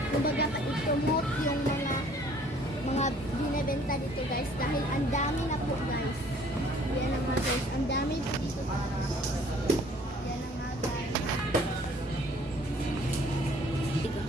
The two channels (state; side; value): normal; both; correlation 0.56